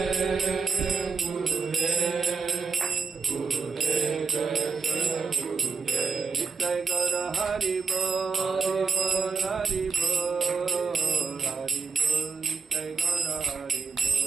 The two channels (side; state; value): left; quieter; 5.0 dB